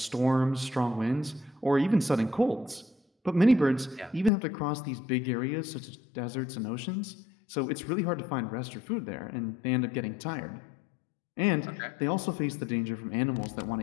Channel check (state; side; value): drops out; right; at 4.3 s